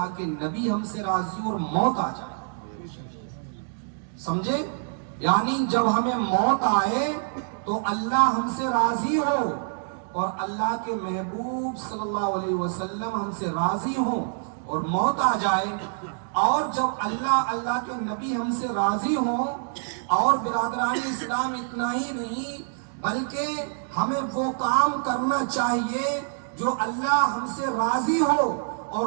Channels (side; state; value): left; silent; digital silence